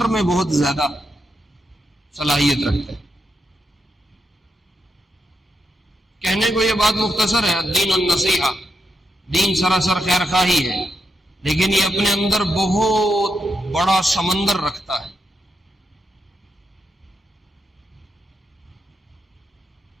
میں بہت زیادہ صلاحیت رکھتے ہیں. کہنے کو یہ بات مختصر ہے، الدین النصیحہ، دین سراسر خیر خواہی ہے، لیکن یہ اپنے اندر بہت بڑا سمندر رکھتا ہے.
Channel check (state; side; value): normal; both; correlation 0.83